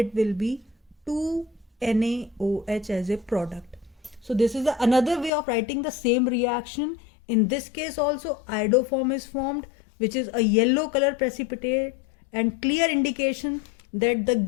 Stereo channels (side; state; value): right; drops out; at 5.3 s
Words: will be 2NaOH as a product. So this is another way of writing the same reaction. In this case also iodoform is formed, which is a yellow color precipitate and clear indication that the